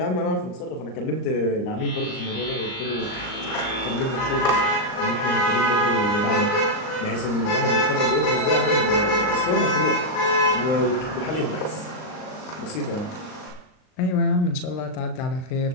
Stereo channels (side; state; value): right; late; 39 ms